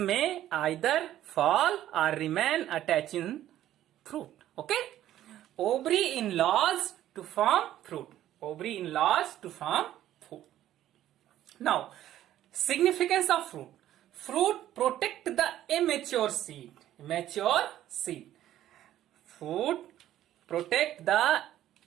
either fall or remain attached in fruit. Okay. Ovary enlarged to form fruit. Now, significance of fruit. Fruit protect the immature seed. Fruit protect the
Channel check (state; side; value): quieter; left; 12.7 dB